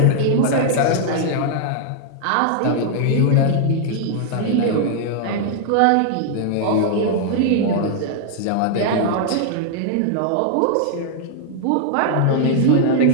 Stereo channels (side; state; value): both; different; correlation -0.01